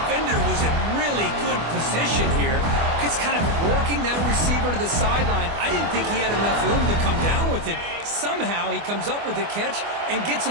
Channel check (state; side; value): late; left; 24 ms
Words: was in really good position here. Just kind of working that receiver to the sideline. I didn't think he had enough room to come down with it. Somehow he comes up with the catch and gets